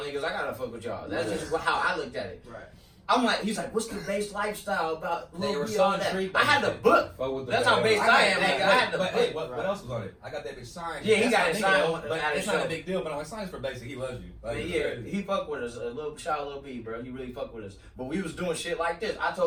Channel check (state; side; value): identical; both; correlation 1.00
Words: niggas. I gotta fuck with y'all. That's just how I looked at it. Right. I'm like, he's like, what's the bass lifestyle about? They Lil were B, so all that. intrigued I by had the it. book. Fuck with the That's how band. based I am, nigga. I had the But hey, book. what else was on it? I got that bitch signed. Yeah, he That's got my it nigga, signed though, but at it's his not show. a big deal, but I'm like, signs for Basic. He loves you. Like, Yeah, he fuck with us. Shout out Lil B, bro. He really fuck with us. But we was doing shit like this. I